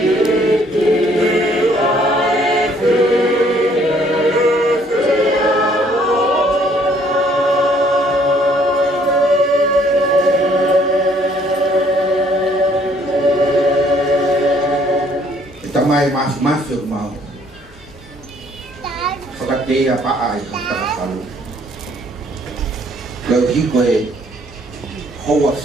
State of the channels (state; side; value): normal; both; correlation 0.63